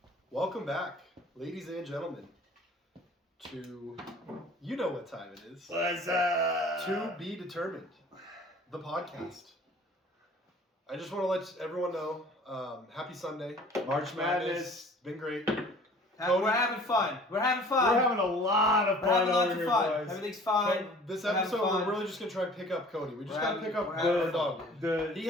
Welcome back, ladies and gentlemen, to you know what time it is. What's up? To be determined, the podcast. I just want to let everyone know, happy Sunday. March Madness. Been great. We're having fun. We're having fun. We're having a lot of We're fun having lots over of here, fun. boys. Everything's fine. This We're having episode, fun. we're really just going to try and pick up Cody. We just We're got to having- pick up we're our having dog. fun. He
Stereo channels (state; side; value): normal; both; correlation 0.49